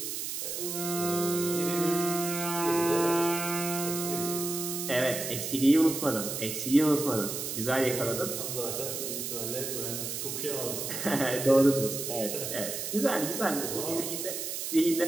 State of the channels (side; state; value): right; noise; hiss, 4 dB below the sound